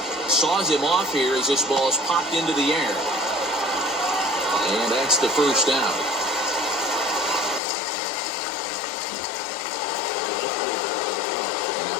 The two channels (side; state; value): right; drops out; at 7.6 s